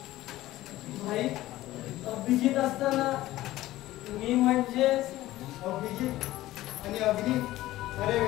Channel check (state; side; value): quieter; right; 16.0 dB